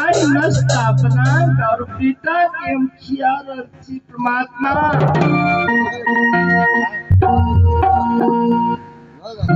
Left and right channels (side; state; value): both; identical; correlation 1.00